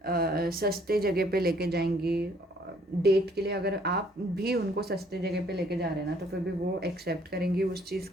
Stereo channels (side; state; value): both; normal; correlation 0.62